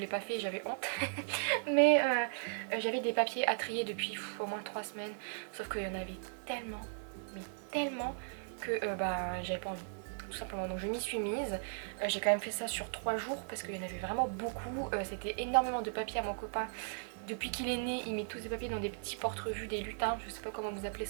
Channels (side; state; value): left; silent; digital silence